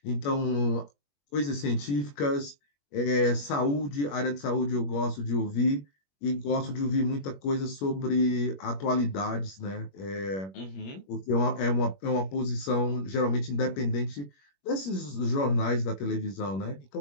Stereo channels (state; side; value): late; right; 21 ms